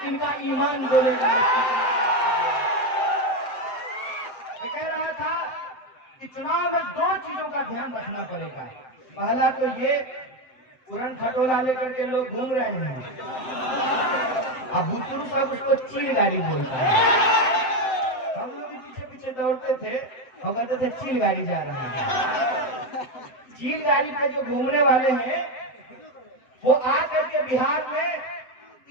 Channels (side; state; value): right; late; 7.8 ms